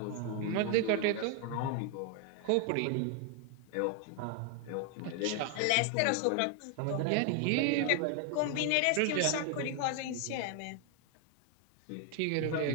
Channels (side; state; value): both; different; correlation 0.00